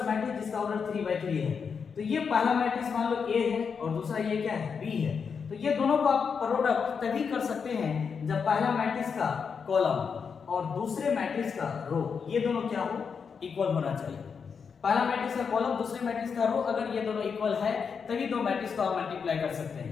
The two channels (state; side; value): quieter; right; 6.1 dB